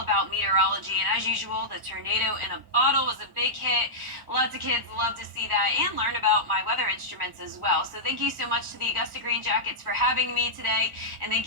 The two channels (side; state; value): left; late; 1.0 ms